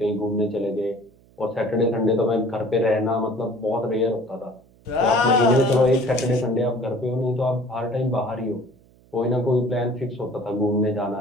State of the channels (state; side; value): noise; right; hum, 29 dB below the sound